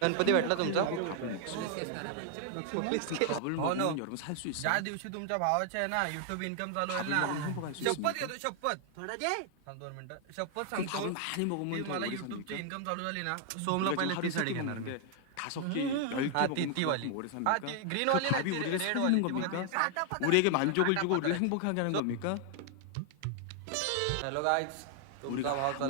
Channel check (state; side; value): different; both; correlation 0.00